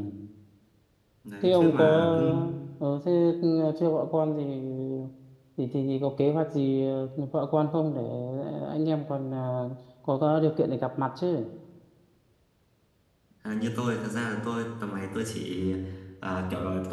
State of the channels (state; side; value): identical; both; correlation 1.00